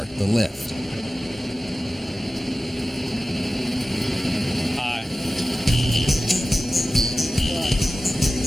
the lift. Aye.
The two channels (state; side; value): normal; both; correlation 0.96